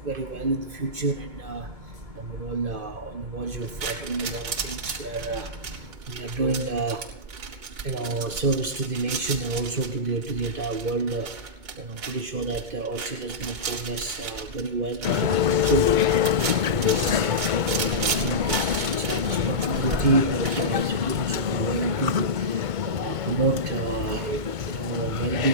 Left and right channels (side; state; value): left; late; 2.2 ms